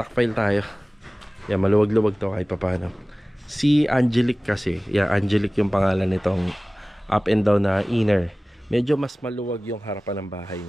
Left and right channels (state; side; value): normal; both; correlation 0.98